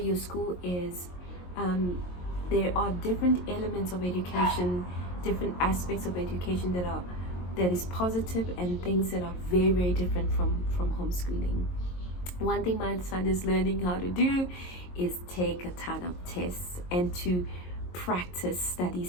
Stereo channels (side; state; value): right; late; 22 ms